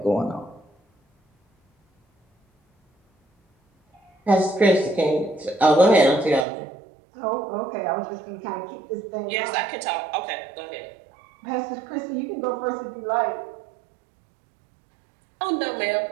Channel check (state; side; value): drops out; left; at 6.5 s